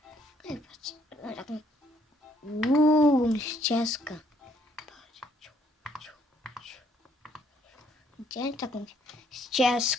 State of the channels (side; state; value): both; normal; correlation 0.67